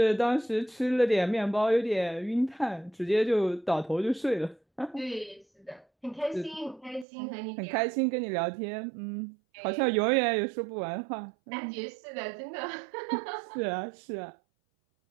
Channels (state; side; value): drops out; left; at 7.1 s